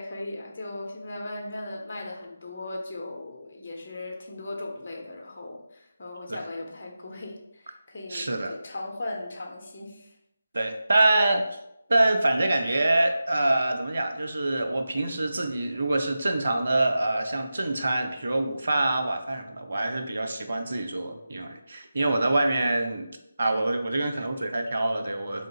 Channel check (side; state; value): both; inverted; correlation -0.93